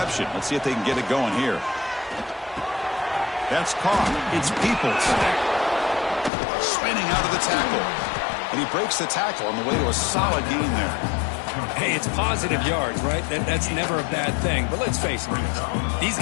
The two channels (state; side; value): drops out; right; at 6.3 s